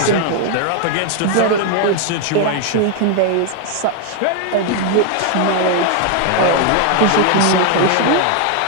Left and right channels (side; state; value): both; different; correlation 0.00